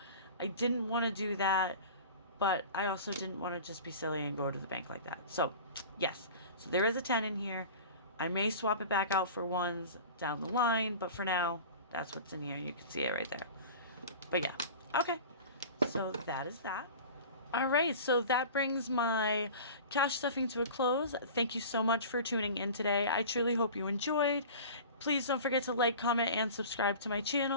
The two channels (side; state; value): both; inverted; correlation -0.37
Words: I didn't want to do that, but I also didn't want to just be silly and go to the bank like that. So yes, so there is a 10 in here. I may swap it back out for ones down the line, but for now, that's what's in here. You can see it right there. But yeah, okay. So that is that. All right, so that brings my cash stuffing to a close. Thank you so much for tuning in today. I truly hope you enjoyed. Please don't forget to like, comment, and subscribe to my